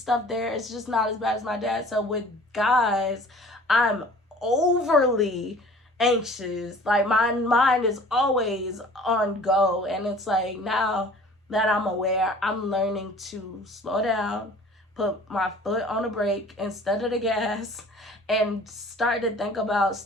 there. It's just not as bad as my dad. So with guys, I'm overly anxious. Like my mind is always on go, and it's like, now that I'm aware, I'm learning to slow down, put my foot on the brake instead of the gas, and start to think about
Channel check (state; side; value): normal; both; correlation 0.48